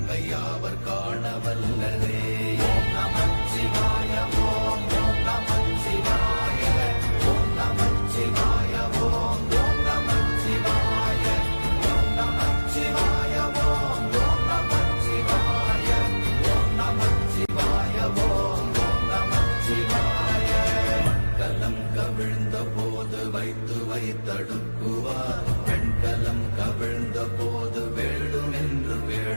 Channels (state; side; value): inverted; both; correlation -1.00